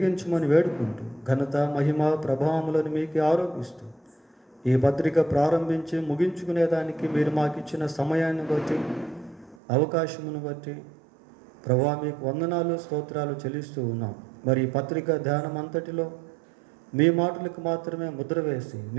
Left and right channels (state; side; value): drops out; left; at 9.6 s